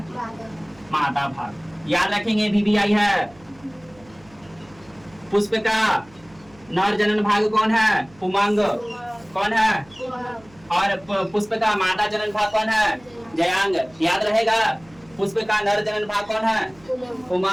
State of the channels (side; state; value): right; noise; hum, 26 dB below the sound